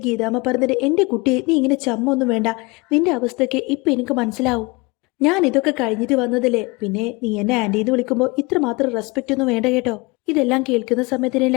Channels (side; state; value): right; quieter; 25.7 dB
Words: ഗീതാമ്മ പറഞ്ഞിട്ട്, എന്റെ കുട്ടിയെ, നീ ഇങ്ങനെ ചമ്മൊന്നും വേണ്ട. നിന്റെ അവസ്ഥയ്ക്ക് ഇപ്പൊ എനിക്ക് മനസ്സിലാവും. ഞാൻ ഇതൊക്കെ കഴിഞ്ഞിട്ട് വന്നതല്ലേ. പിന്നെ നീ എന്നെ ആന്റിന്ന് വിളിക്കുമ്പോൾ ഇത്രമാത്രം റെസ്പെക്റ്റ് ഒന്നും വേണ്ട കേട്ടോ. ഇതെല്ലാം കേൾക്കുന്ന സമയത്തിന്